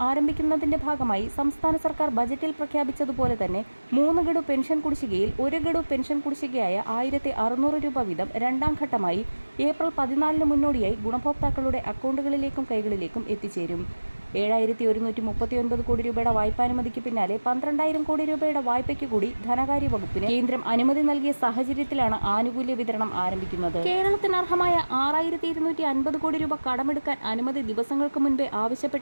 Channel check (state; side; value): inverted; both; correlation -1.00